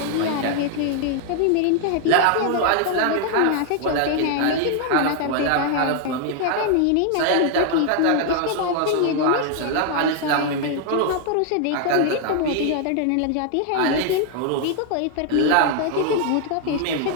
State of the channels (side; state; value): both; different; correlation 0.00